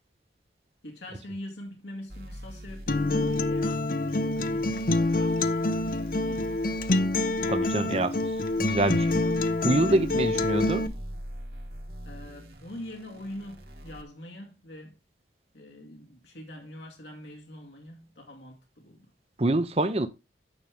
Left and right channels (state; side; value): normal; both; correlation 0.58